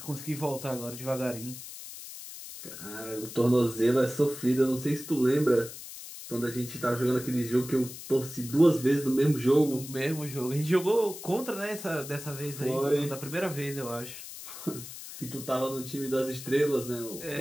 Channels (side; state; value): left; noise; hiss, 12 dB below the sound